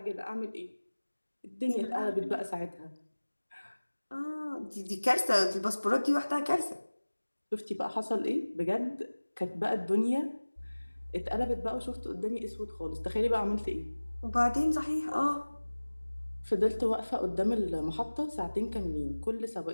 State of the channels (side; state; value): both; inverted; correlation -1.00